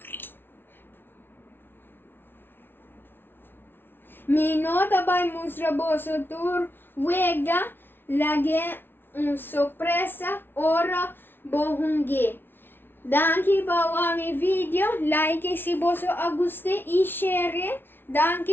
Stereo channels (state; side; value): late; right; 0.10 ms